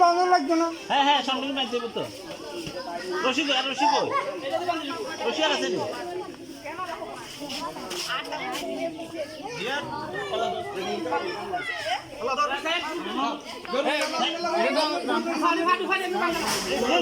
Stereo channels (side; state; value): both; identical; correlation 1.00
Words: বাঁধা লাগবে না। হ্যাঁ সামনে বাঁধতে দেবো তো। রশি আর আছে